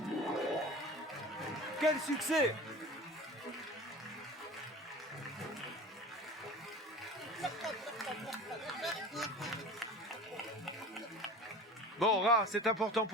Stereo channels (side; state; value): both; normal; correlation 0.38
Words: Quel succès! Bon, Ra, c'est important